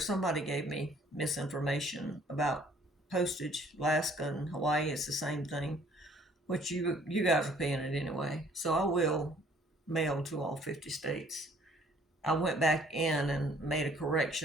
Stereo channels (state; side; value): normal; both; correlation 0.58